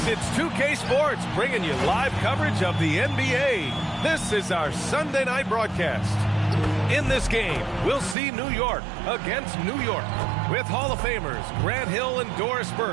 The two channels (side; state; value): left; drops out; at 8.2 s